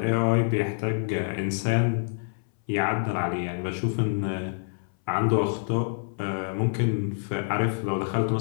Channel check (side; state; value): right; silent; 60 dB below the other